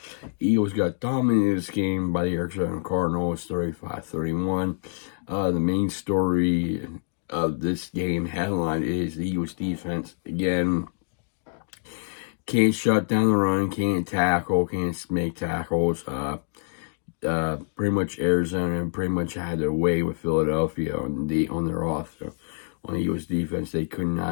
Eagles got dominated this game by the Arizona Cardinals 35-31. The main story of this game headline is the Eagles defense again can't shut down the run, can't tackle, can't make tackles. Pretty much Arizona pretty much had their way with Philadelphia on their offense. On the Eagles defense, they could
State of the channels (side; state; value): right; silent; digital silence